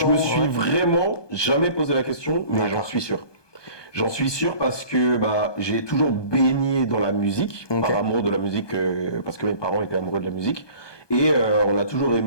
me suis vraiment jamais posé la question, mais j'en suis sûr. J'en suis sûr parce que j'ai toujours baigné dans la musique, par amour de la musique, parce que mes parents étaient amoureux de la musique. Et on a toujours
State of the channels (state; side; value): late; right; 1.2 ms